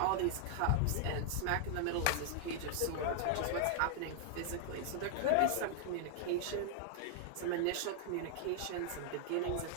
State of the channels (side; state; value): both; different; correlation 0.00